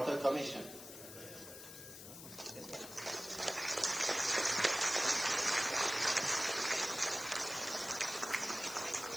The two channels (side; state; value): left; noise; hiss, 13 dB below the sound